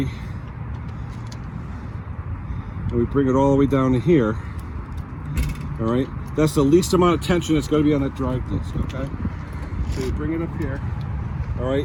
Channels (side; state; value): both; identical; correlation 1.00